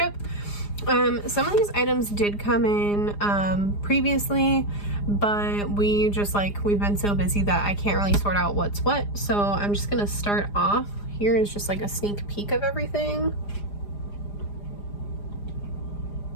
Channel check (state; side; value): late; right; 4.9 ms